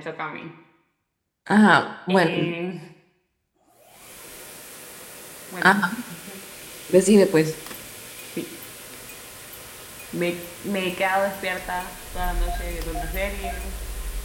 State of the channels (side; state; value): both; identical; correlation 1.00